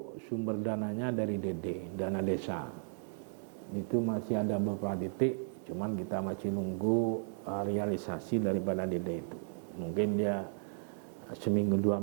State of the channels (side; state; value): left; silent; digital silence